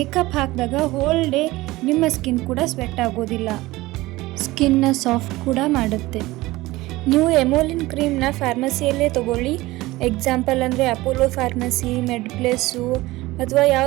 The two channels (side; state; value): left; quieter; 19.1 dB